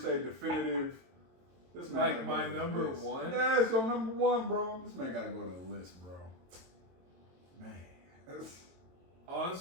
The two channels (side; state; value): left; late; 22 ms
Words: say definitive. This man like my number 1. Yeah, it's your number 1, bro. This man gotta go to the list, bro. Man,